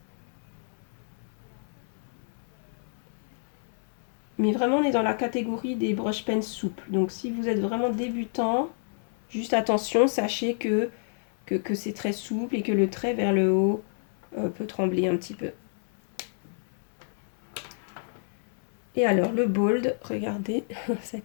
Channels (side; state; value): right; silent; 59 dB below the other